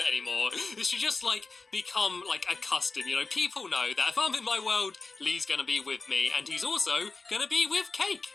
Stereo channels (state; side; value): quieter; right; 4.0 dB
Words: it anymore. It should just, become, a custom, you know? People know that if I'm in my world, Lee's gonna be with me, and he's also gonna be with cake.